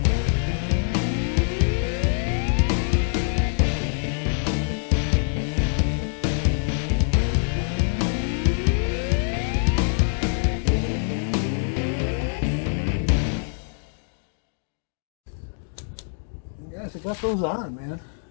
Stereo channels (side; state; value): right; silent; digital silence